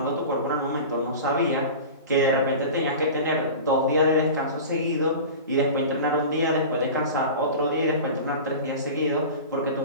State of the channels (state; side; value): inverted; both; correlation -0.33